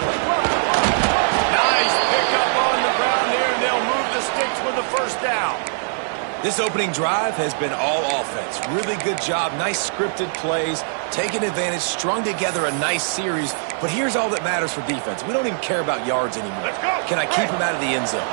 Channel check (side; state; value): left; silent; digital silence